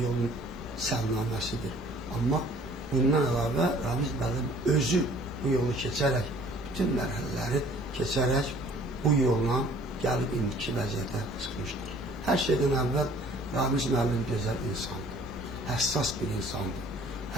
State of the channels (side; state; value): both; normal; correlation 0.54